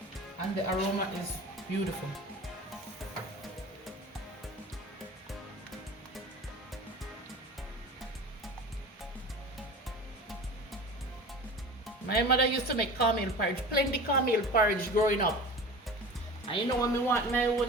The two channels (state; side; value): normal; both; correlation 0.36